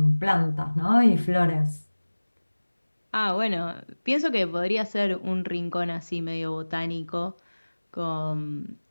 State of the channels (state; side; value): inverted; both; correlation -1.00